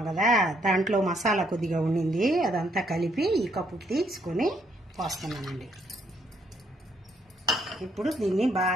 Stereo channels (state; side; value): normal; both; correlation 0.71